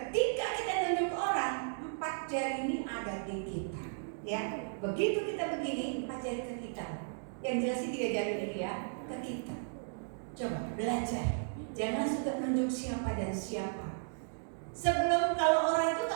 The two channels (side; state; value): left; silent; digital silence